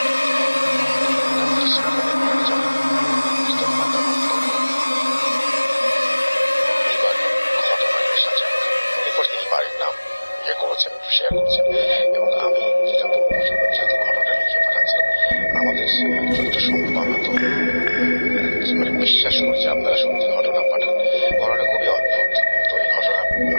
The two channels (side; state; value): both; inverted; correlation -1.00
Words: শেয়ার করছেন এবং আমি যেটা বলবো যেহেতু ঘটনাটা লিখে পাঠাচ্ছেন আমাদের যতটা সম্ভব আমরা তো মানে বিশ্বাস করছি আপনারা সত্যি ঘটনা পাঠান। ঘটনা খুবই অদ্ভুত। তো এই ঘটনা